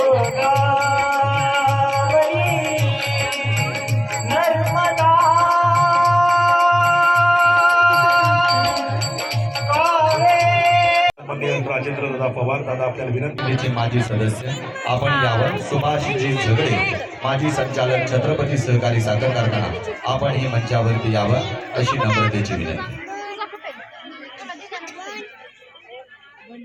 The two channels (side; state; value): both; identical; correlation 1.00